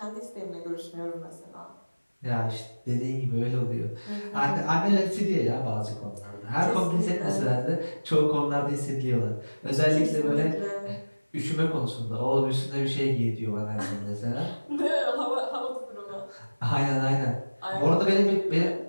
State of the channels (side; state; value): both; inverted; correlation -1.00